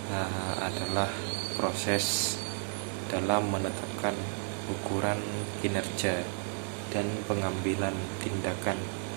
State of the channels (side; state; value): left; silent; 56 dB below the other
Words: adalah proses dalam menetapkan ukuran kinerja dan pengambilan tindakan